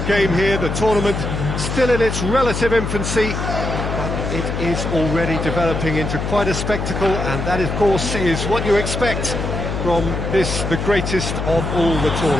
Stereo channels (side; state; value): left; noise; hum, 3 dB below the sound